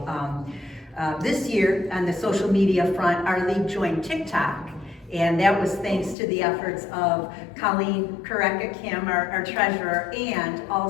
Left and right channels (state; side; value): drops out; right; at 6.2 s